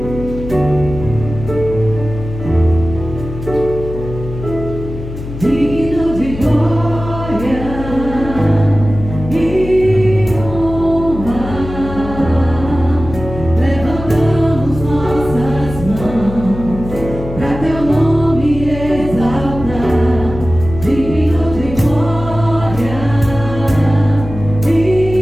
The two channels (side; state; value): left; noise; hum, 9 dB below the sound